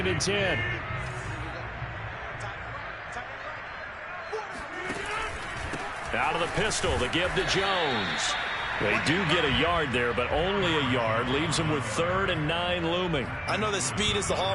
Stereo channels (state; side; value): identical; both; correlation 1.00